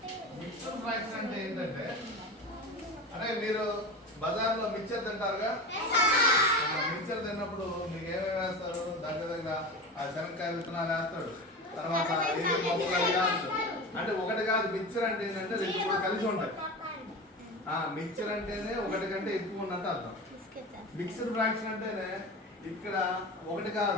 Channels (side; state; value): both; normal; correlation 0.28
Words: మిక్స్డ్ ఫ్రాక్షన్ అంటే ఏంటంటే, అరే మీరు బజార్లో మిక్చర్ తింటారుగా, మిక్చర్ తిన్నప్పుడు మీకు ఏమేమి వేస్తారు? దగ్గర ఆ శనక్కాయ విత్తనాలు వేస్తాడు, తర్వాత అంటే ఒకటి కాదు. మిక్చర్ అంటే ఏంటంటే రెండు మూడు కలిసి ఉంటాయి. మిక్చర్ అంటేనే ఒకటి కంటే ఎక్కువ ఉన్నట్టు అర్థం. మిక్స్డ్ ఫ్రాక్షన్ అంటేనే ఇక్కడ ఒకటి